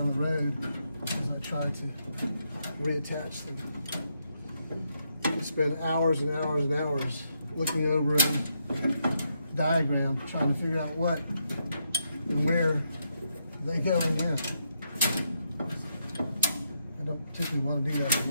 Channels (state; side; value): inverted; both; correlation -0.80